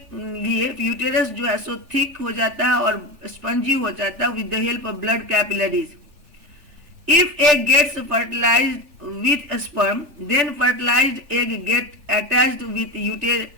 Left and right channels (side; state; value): left; late; 3.4 ms